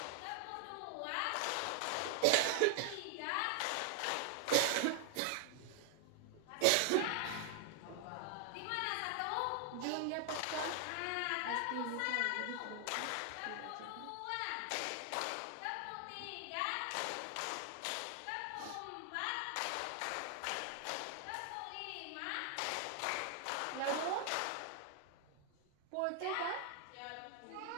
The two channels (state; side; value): different; both; correlation 0.00